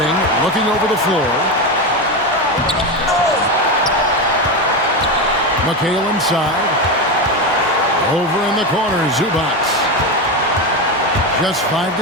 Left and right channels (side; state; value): both; normal; correlation 0.16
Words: looking over the floor. McHale inside. Over in the corner, Zubac. Just 5